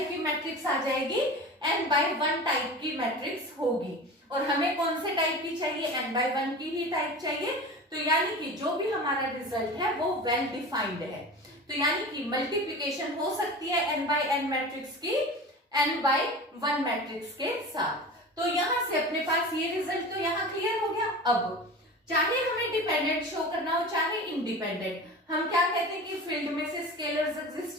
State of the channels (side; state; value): both; normal; correlation 0.33